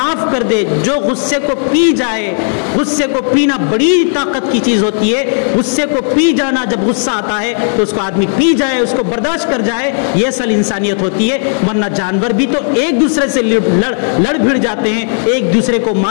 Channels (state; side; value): silent; right; 72 dB below the other